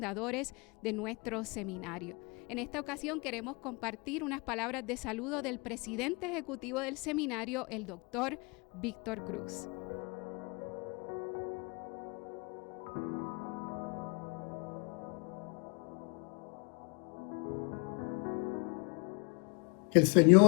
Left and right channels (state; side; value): quieter; right; 31.0 dB